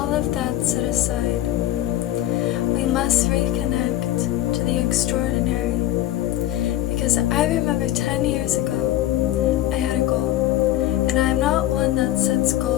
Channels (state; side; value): quieter; right; 13.7 dB